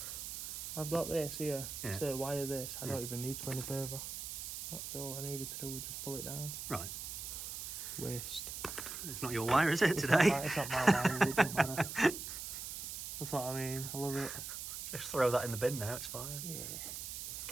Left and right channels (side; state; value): right; noise; hiss, 6 dB below the sound